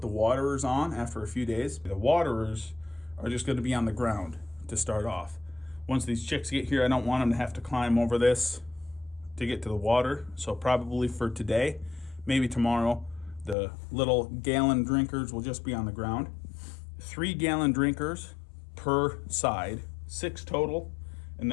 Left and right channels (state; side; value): drops out; right; at 13.6 s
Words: the waterers on after a few days. The waterers are just going to be on the ground to start off. Once these chicks get here, I don't want them to have to climb over this to get to the water. So probably for today, maybe tomorrow, the little gallon drinkers will just be on the ground. 3 gallon drinkers per side, 6 total, and